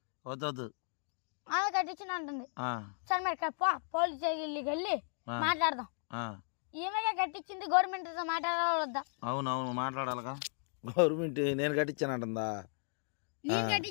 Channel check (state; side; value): silent; right; 54 dB below the other